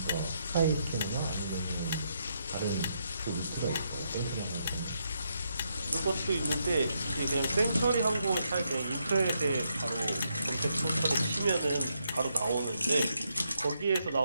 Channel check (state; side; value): inverted; both; correlation -0.79